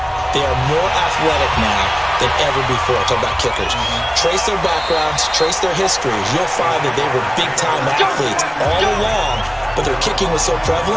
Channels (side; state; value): both; identical; correlation 1.00